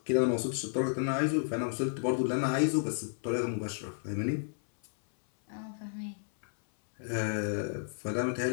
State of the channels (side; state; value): right; silent; 56 dB below the other